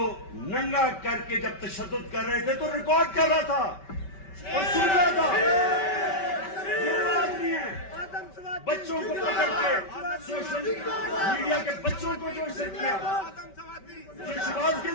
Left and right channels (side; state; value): right; late; 5.2 ms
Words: ننگا کر کے جب تشدد کر رہے تھے تو ریکارڈ کر رہا تھا اور سن رہا تھا، یہ آدمی ہے، بچوں کو پکڑ کے سوشل میڈیا کے بچوں کو جو اسے کیا، جو شہباز